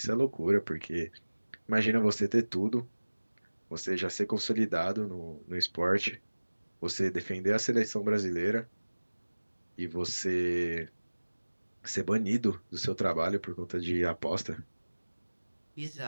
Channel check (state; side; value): inverted; both; correlation -1.00